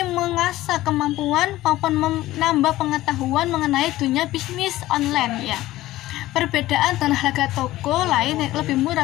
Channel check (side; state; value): right; quieter; 16.1 dB